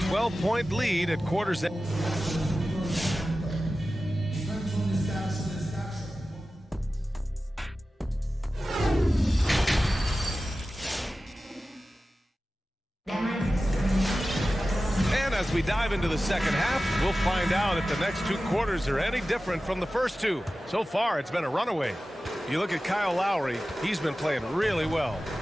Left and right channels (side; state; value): both; normal; correlation 0.95